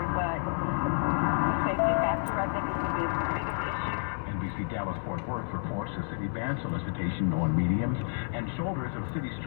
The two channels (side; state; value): right; silent; 58 dB below the other